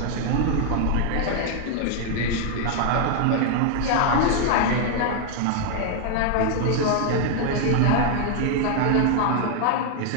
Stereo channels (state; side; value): different; both; correlation 0.00